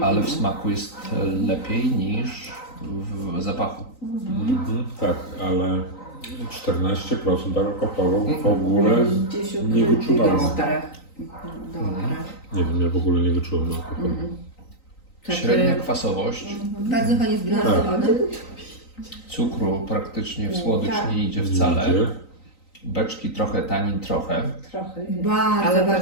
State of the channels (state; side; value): late; right; 3.9 ms